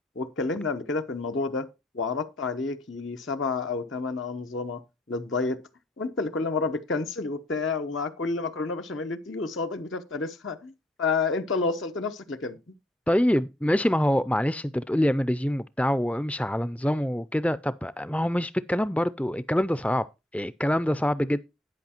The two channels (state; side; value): normal; both; correlation 0.70